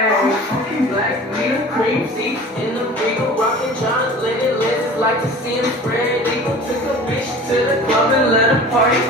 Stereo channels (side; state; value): both; normal; correlation 0.41